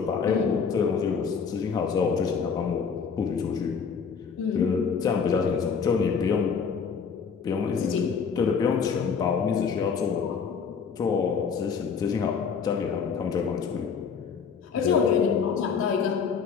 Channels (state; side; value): quieter; right; 6.1 dB